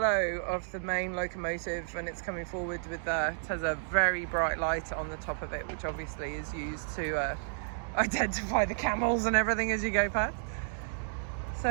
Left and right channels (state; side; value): silent; left; digital silence